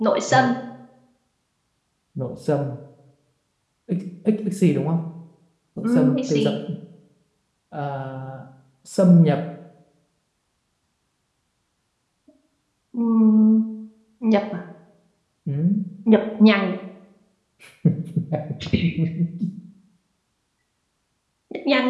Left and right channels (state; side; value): identical; both; correlation 1.00